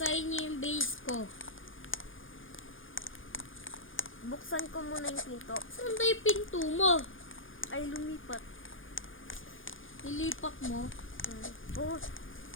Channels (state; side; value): late; right; 0.58 ms